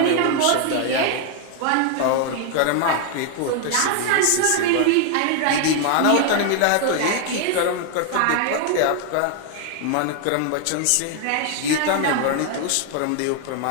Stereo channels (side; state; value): both; different; correlation 0.01